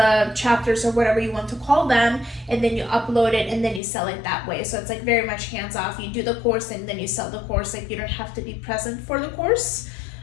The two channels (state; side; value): drops out; right; at 3.8 s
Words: chapters, or whatever you want to call them, and then you upload it and then you sell it that way. So it's like very much hands-off. You do the course and then you sell the course. Like you don't have to be present for the course